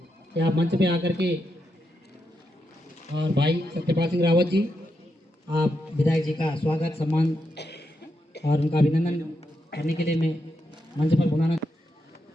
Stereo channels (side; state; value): both; normal; correlation 0.84